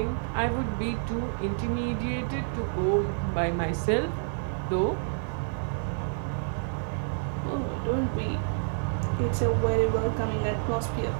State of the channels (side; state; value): left; silent; digital silence